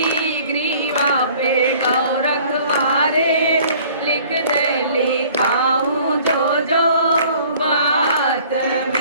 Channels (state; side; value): inverted; both; correlation -0.52